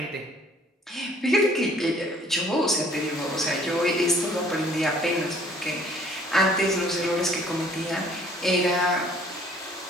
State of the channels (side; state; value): both; normal; correlation 0.58